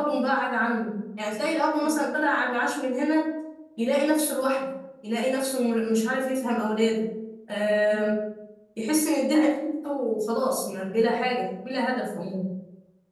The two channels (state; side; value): identical; both; correlation 1.00